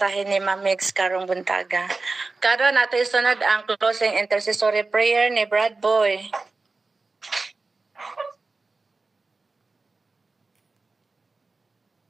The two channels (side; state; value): left; quieter; 3.7 dB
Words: ni Ma'am Mix karong buntaga. Karon nato isunod ang closing intercessory prayer ni Brad Boy.